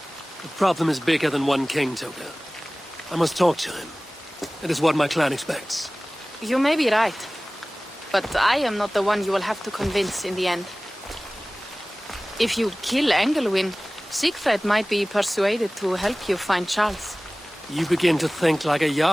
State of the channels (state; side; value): normal; both; correlation 0.98